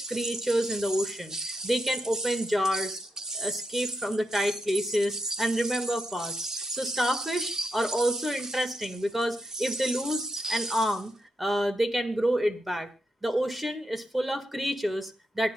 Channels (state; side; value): normal; both; correlation 0.84